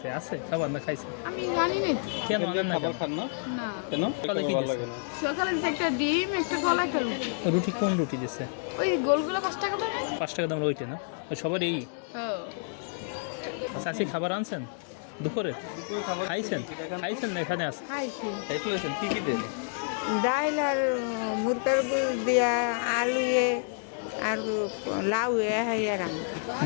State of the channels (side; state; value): right; silent; digital silence